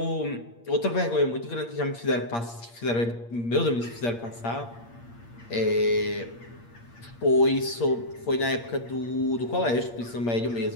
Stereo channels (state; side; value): late; right; 8.6 ms